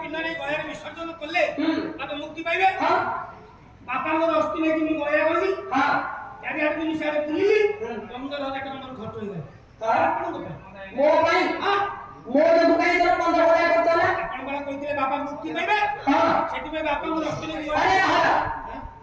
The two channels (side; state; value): both; identical; correlation 1.00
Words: ନେଇ ଗୟାରେ ବିସର୍ଜନ କଲେ ତାପରେ ମୁକ୍ତି ପାଇବେ ବାପାଙ୍କର ଅସ୍ଥି ନେଇକି ମୁଁ ଗୟା ଗଲି ଚାରିଆଡେ ମୁଁ ସିଆଡେ ବୁଲିଲି 15,000 ଟଙ୍କା ମୋର ଖର୍ଚ୍ଚ ହେଇଗଲା ମୋ ପାଇଁ ମୋ ଯୋଗୁ କାଇଁ ତୋର 15,000 ଖର୍ଚ୍ଚ ହେଲା ଆପଣ କଣ କହିଥିଲେ ବାପା ମୁକ୍ତି ପାଇବେ ସେଥିପାଇଁ ବାପାଙ୍କର ଅସ୍ଥି ନେଇକି